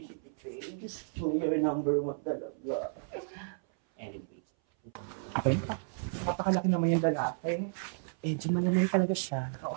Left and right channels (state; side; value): silent; left; 56 dB below the other